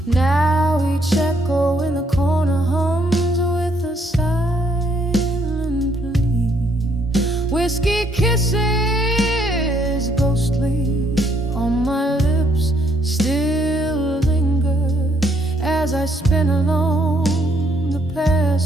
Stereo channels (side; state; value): both; normal; correlation 0.70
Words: kisses ghostly on my lips still linger as I spin along the